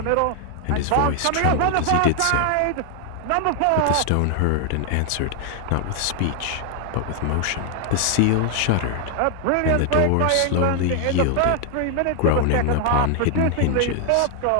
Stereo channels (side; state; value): both; different; correlation 0.00